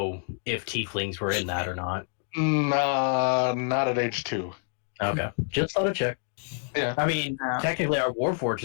if tieflings were in that or not. Nah, not at age 2. Okay, just thought I'd check. Yeah. I mean, technically, our Warforged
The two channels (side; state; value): right; silent; 57 dB below the other